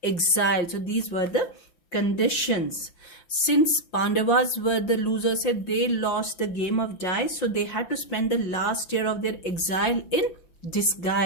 exile. So these were the conditions. Since Pandavas were the losers, they lost the game of dice, so they had to spend the last year of their exile in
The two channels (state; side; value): late; right; 5.6 ms